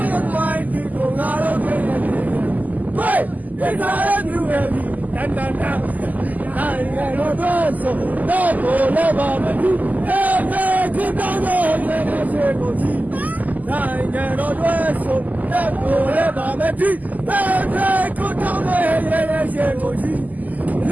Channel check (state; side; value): late; left; 0.080 ms